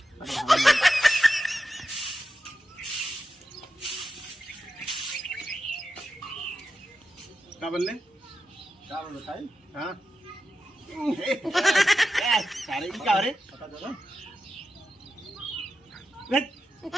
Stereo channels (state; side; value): normal; both; correlation 0.90